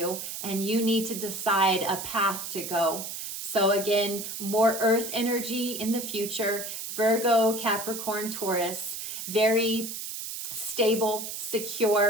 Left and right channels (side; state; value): right; noise; hiss, 7 dB below the sound